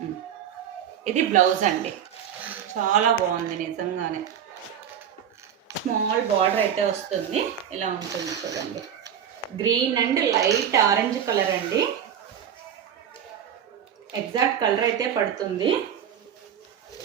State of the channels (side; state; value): left; quieter; 9.1 dB